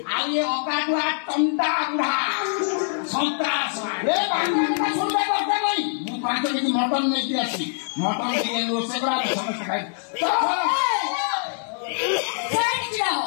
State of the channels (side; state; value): right; silent; 63 dB below the other